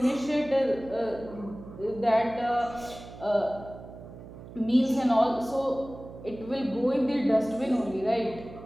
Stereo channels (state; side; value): noise; right; hum, 15 dB below the sound